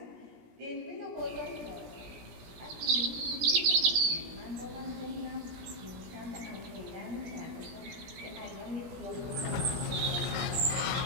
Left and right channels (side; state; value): left; late; 17 ms